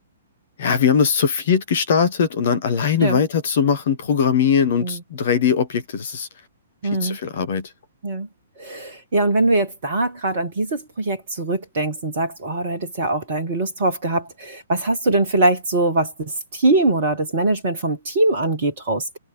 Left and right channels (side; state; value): both; inverted; correlation -0.48